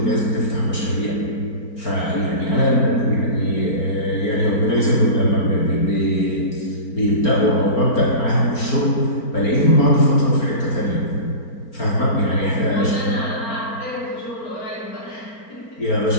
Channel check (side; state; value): right; late; 4.4 ms